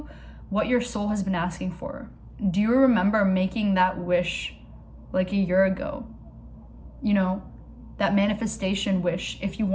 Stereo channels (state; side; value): identical; both; correlation 1.00